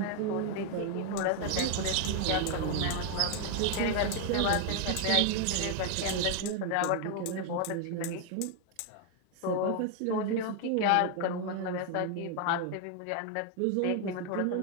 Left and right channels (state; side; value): different; both; correlation 0.01